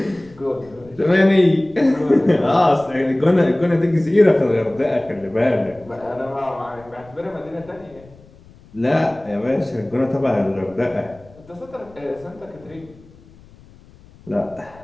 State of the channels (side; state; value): left; noise; rumble, 25 dB below the sound